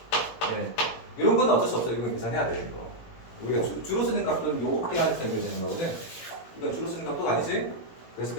네. 이런 건 어쩔 수 없어. 이건 계산해야 돼, 이거. 우리가 주로 쓰는 각도는 요렇게 하는 셈이 되는 거거든. 이건 주로 쓰는 각도가 아니지? 그래서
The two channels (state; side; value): late; right; 17 ms